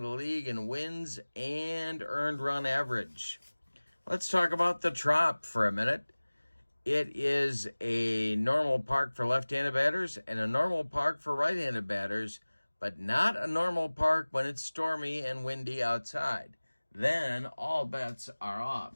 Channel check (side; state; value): both; inverted; correlation -1.00